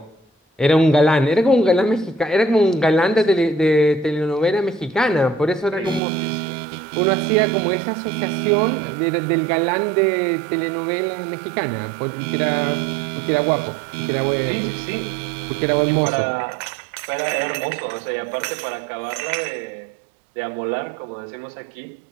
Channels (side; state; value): left; drops out; at 6.0 s